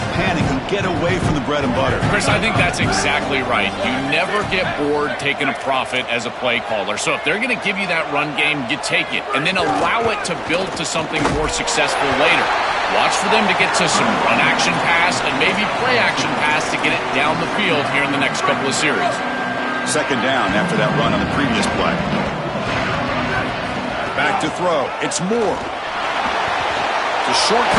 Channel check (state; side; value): identical; both; correlation 1.00